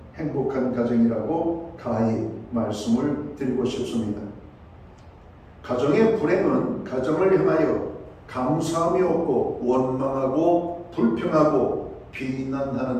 행복한 가정이라고 가히 말씀을 드리고 싶습니다. 가정의 불행은 가정을 향하여 감사함이 없고 원망하고 불평하고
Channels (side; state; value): both; identical; correlation 1.00